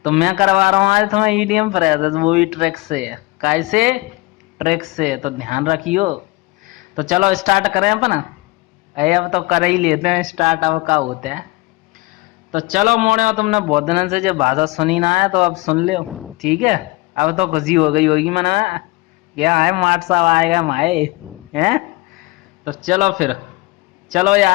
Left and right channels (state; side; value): quieter; right; 22.4 dB